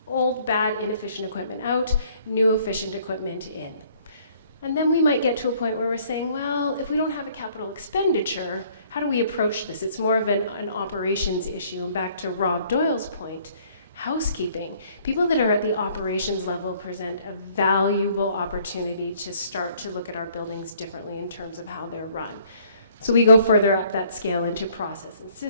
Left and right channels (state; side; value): inverted; both; correlation -0.61